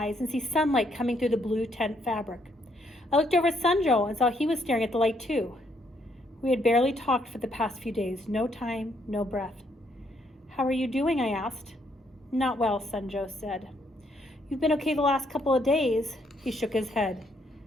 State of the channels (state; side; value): normal; both; correlation 0.72